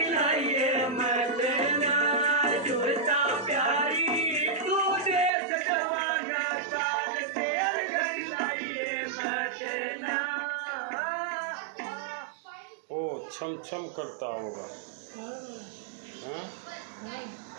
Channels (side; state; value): left; drops out; at 5.3 s